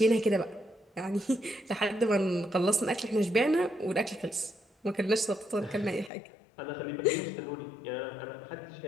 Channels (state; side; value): drops out; right; at 6.1 s